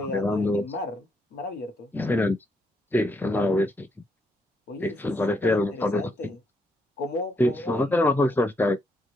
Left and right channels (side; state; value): both; normal; correlation 0.77